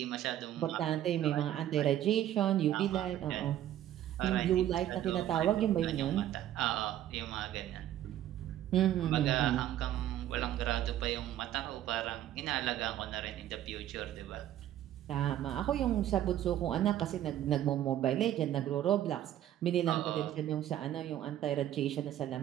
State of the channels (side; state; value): left; quieter; 12.2 dB